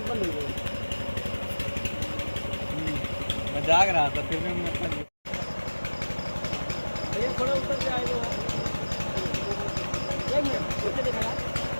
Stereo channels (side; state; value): both; inverted; correlation -1.00